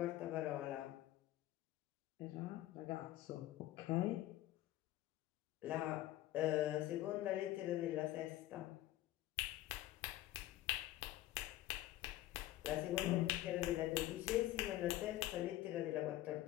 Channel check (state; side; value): quieter; right; 14.9 dB